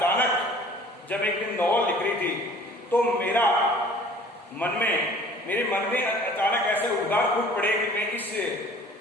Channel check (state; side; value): normal; both; correlation 0.50